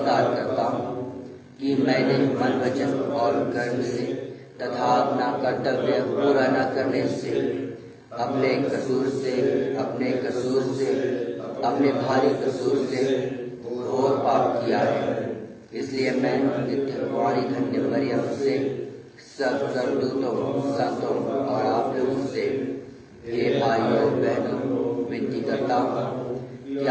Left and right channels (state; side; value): identical; both; correlation 1.00